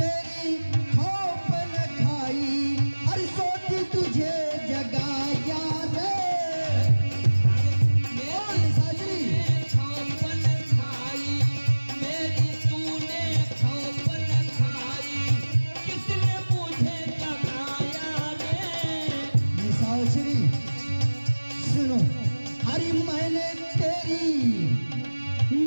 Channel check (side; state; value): both; inverted; correlation -1.00